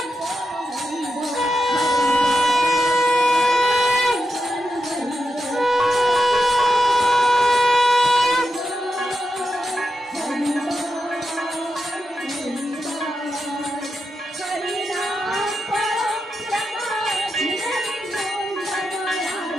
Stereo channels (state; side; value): normal; both; correlation 0.88